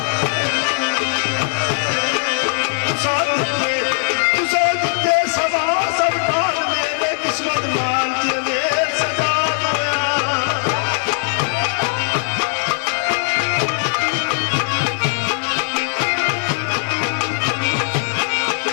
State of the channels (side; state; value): right; silent; digital silence